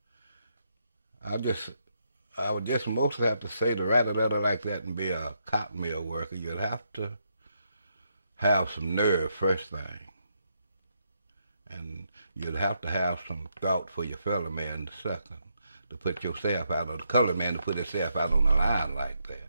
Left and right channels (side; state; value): both; inverted; correlation -0.78